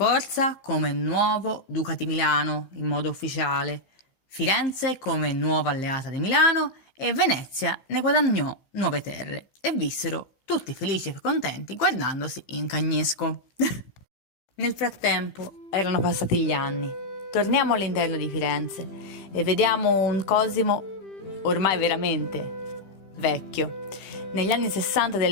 come nuovo duca di Milano in modo ufficiale, Firenze come nuova alleata di Milano e Venezia ne guadagnò nuove terre e vissero tutti felici e contenti guardandosi in cagnesco. Nel frattempo erano passati gli anni. Torniamo all'interno di Firenze e vediamo un Cosimo ormai veramente vecchio. Negli anni 60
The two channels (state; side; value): late; right; 15 ms